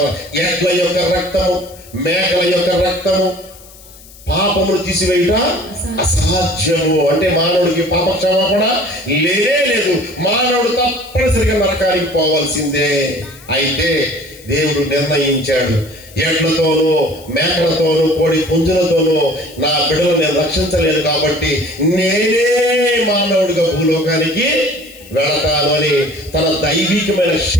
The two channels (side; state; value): left; noise; hiss, 22 dB below the sound